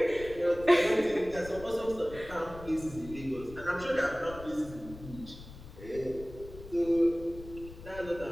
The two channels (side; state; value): left; noise; rumble, 15 dB below the sound